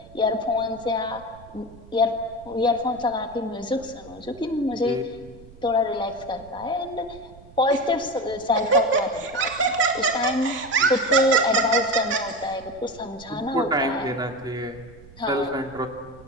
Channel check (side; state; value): right; noise; rumble, 21 dB below the sound